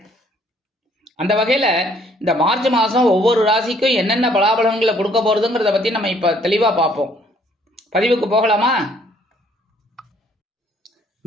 அந்த வகையில் இந்த மார்ச் மாதம் ஒவ்வொரு ராசிக்கும் என்னென்ன பலாபலன்களை கொடுக்க போகிறதுங்கிறத பற்றி நம்ம இப்போ தெளிவாக பார்ப்போம். பதிவுக்கு போகலாமா?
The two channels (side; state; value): both; normal; correlation 0.63